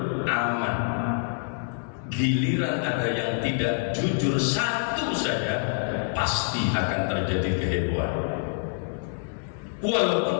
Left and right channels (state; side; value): silent; right; digital silence